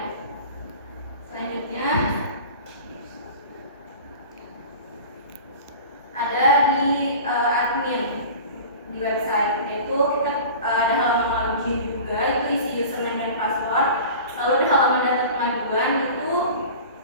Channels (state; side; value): inverted; both; correlation -0.38